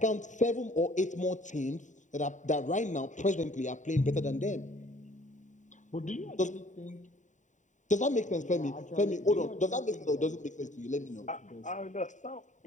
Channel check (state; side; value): late; right; 0.36 ms